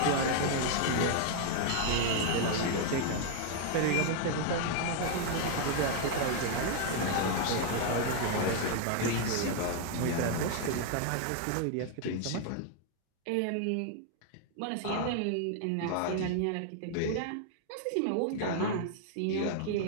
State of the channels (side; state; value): both; different; correlation 0.00